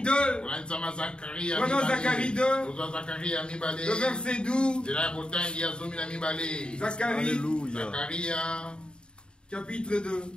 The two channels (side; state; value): right; late; 0.051 ms